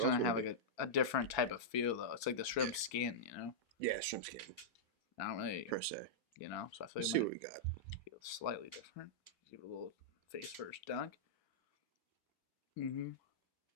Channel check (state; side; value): normal; both; correlation -0.09